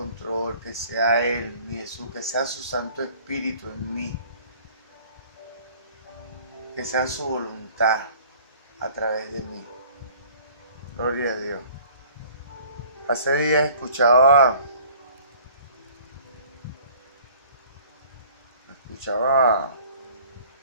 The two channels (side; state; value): both; inverted; correlation -0.52